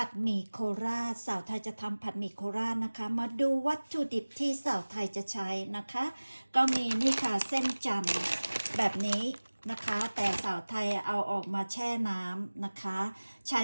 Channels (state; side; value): inverted; both; correlation -1.00